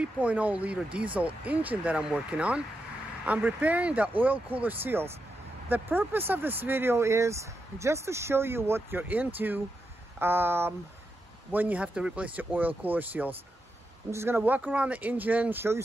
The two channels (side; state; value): both; normal; correlation 0.86